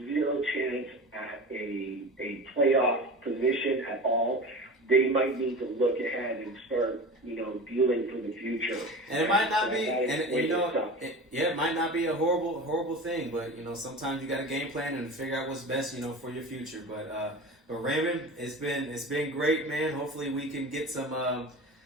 zero chance at a playoff position at all, they might need to look ahead and start, dealing for the future. And it might not be, it might not be a horrible thing, but sometimes you got to game plan and figure out what's best, for your future. But Raymond, it's been great, man. Hopefully we can get some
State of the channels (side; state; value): both; normal; correlation 0.33